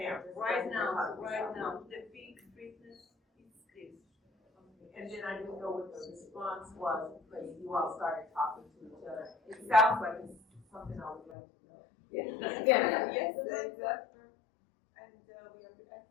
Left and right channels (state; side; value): drops out; right; at 11.4 s